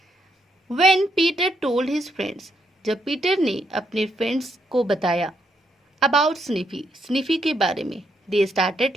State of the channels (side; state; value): both; normal; correlation 0.76